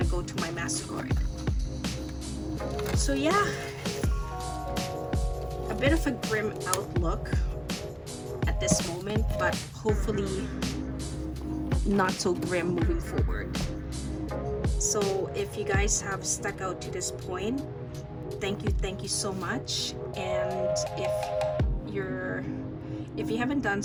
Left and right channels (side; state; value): both; identical; correlation 1.00